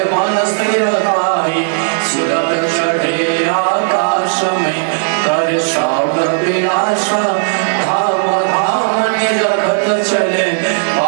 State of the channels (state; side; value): silent; left; digital silence